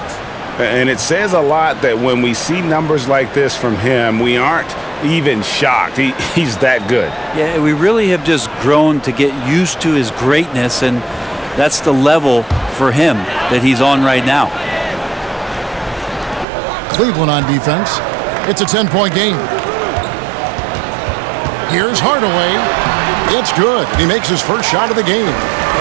And it says a lot that when we see numbers like this from him, we aren't even shocked. He's that good. Yeah, we really have just grown to get used to his greatness, and that's the level for him that he's on right now. Cleveland on defense. It's a 10-point game. Here's Hardaway. It's good. He makes his first shot of the game.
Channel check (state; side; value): drops out; left; at 16.4 s